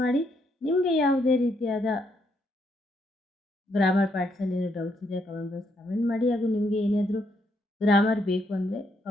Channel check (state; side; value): normal; both; correlation 0.75